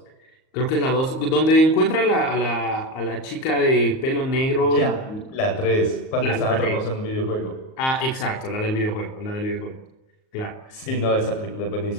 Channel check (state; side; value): late; right; 38 ms